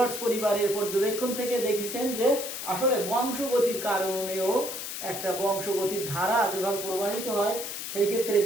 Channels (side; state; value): left; noise; hiss, 6 dB below the sound